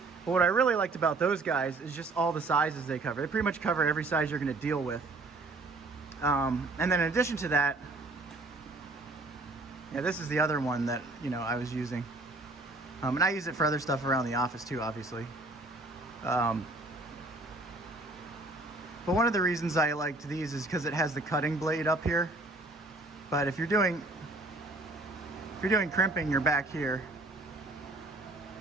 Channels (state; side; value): quieter; left; 3.1 dB